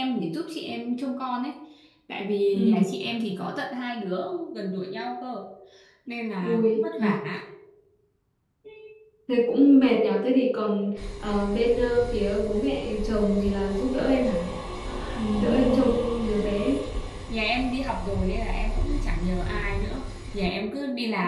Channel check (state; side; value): identical; both; correlation 1.00